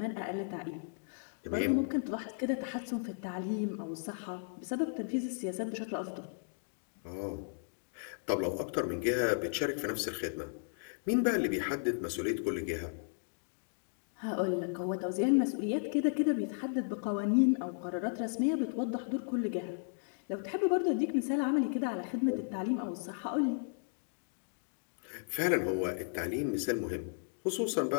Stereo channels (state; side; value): silent; right; digital silence